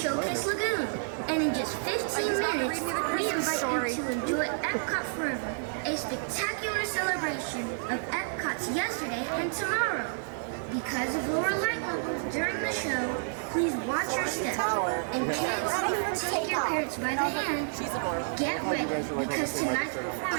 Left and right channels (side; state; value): left; silent; digital silence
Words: Lagoon, and in just 15 minutes, we invite you to enjoy Epcot Forever, a spectacular celebration of Epcot's yesterday and tomorrow. Because of lower light levels during the show, please watch your step. And kids, take your parents by the hand. Get ready, because tonight's